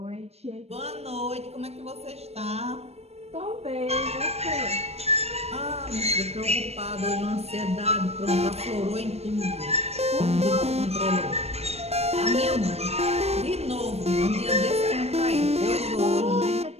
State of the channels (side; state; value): left; late; 0.30 ms